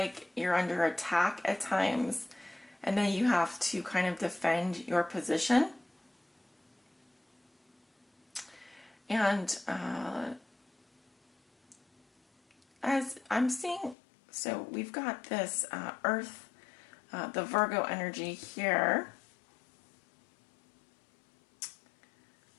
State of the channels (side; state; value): right; drops out; at 14.0 s